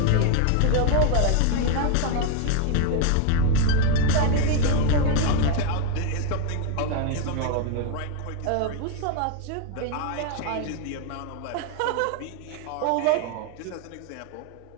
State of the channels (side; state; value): both; different; correlation 0.00